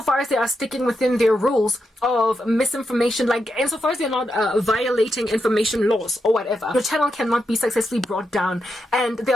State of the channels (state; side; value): normal; both; correlation 0.85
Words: as they are sticking within their rules of misinformation, like insofar as they're not violating information laws or whatever. Your channel cannot be successfully brought down. And